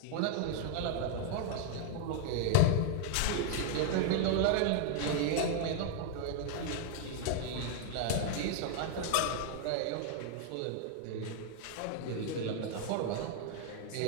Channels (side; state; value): both; different; correlation 0.00